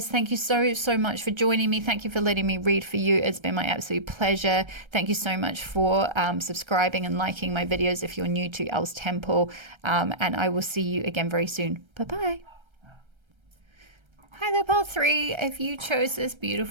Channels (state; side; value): late; left; 1.3 ms